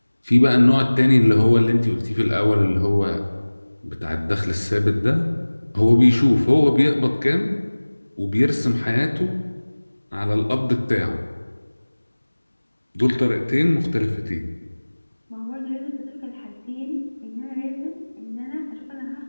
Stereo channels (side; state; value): both; inverted; correlation -1.00